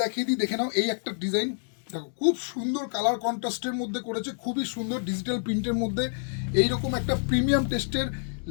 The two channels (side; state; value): right; silent; digital silence